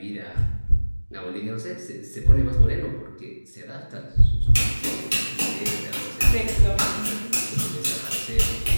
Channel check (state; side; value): inverted; both; correlation -1.00